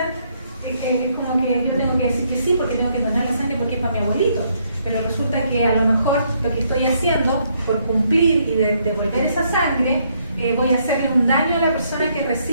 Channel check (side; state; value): both; inverted; correlation -0.72